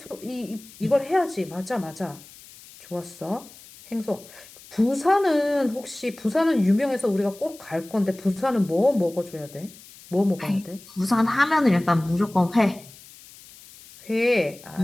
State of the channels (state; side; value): noise; left; hiss, 21 dB below the sound